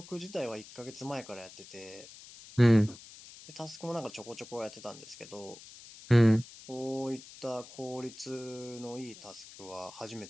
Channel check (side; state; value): left; noise; hiss, 17 dB below the sound